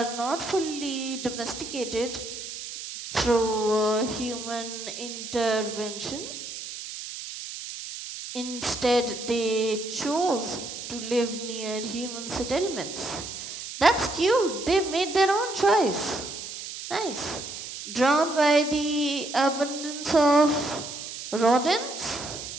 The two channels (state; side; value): noise; right; hiss, 9 dB below the sound